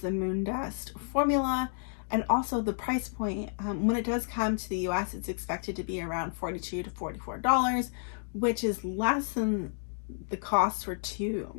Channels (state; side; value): silent; right; digital silence